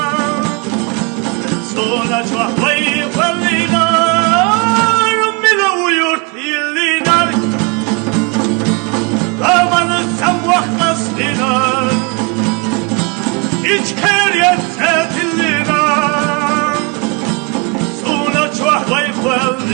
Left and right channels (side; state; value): left; quieter; 31.3 dB